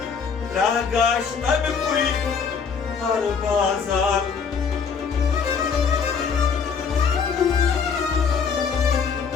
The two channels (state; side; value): quieter; right; 6.0 dB